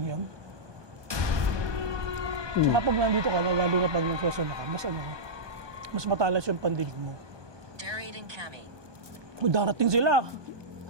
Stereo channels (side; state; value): left; late; 1.2 ms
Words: yan. Tsaka pag nandito ka, lalo na pag nagsasana ka, mas matalas yung pandinig mo. Darian and Cami. O, darating sila.